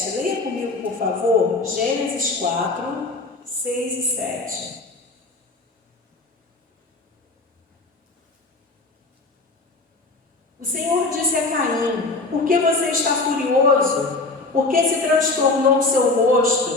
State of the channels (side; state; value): right; quieter; 3.4 dB